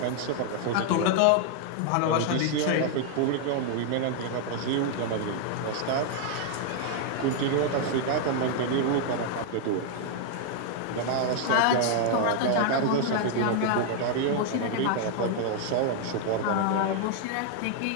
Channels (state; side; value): different; both; correlation 0.00